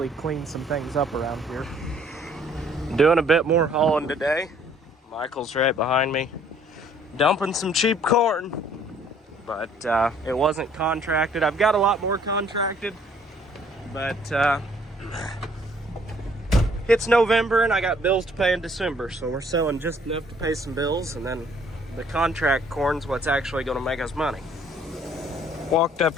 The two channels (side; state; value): both; normal; correlation 0.60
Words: clean some things up around here. Doing a bit more hauling today. Michael's right behind me, dumping some cheap corn, but it wasn't contracted. I've got a lot more contracted, but it's November and I got bills to pay in December, so we're selling just enough to pay some bills, and then the contract corn's what's actually going to make us money. Walked up